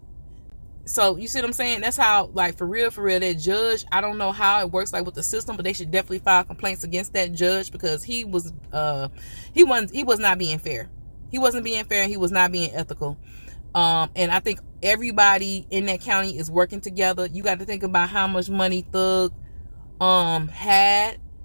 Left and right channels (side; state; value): both; inverted; correlation -1.00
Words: So you see what I'm saying? That's how, like, for real, that judge, I don't know how it works, like, with the system, but they should definitely file complaints against that judge, because he was not being fair. He wasn't being fair, and he was not being ethical. And I think everybody in that county is working together. You got to think about how much money Thug had,